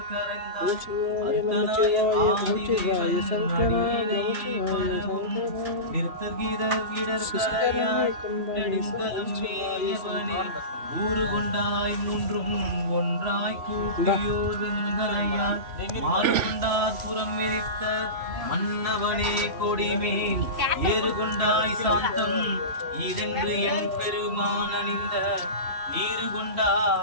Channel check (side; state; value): left; late; 3.1 ms